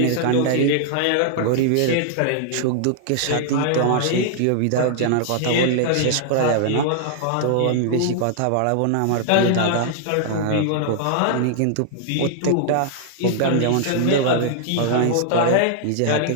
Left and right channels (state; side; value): different; both; correlation -0.01